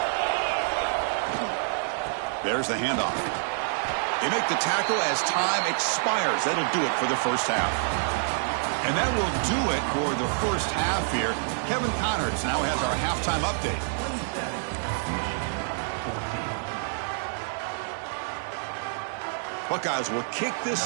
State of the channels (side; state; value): left; silent; digital silence